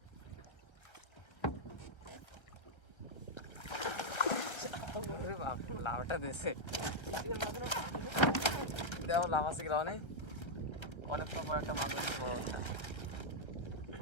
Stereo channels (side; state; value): right; late; 1.3 ms